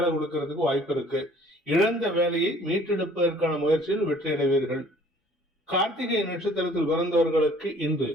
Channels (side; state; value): both; normal; correlation 0.54